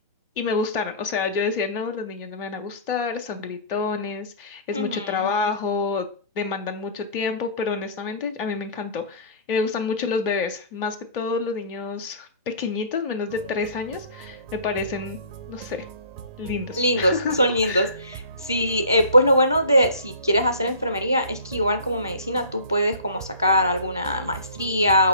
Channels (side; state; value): both; inverted; correlation -0.44